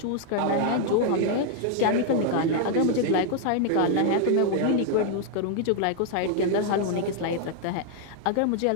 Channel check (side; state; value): both; different; correlation 0.00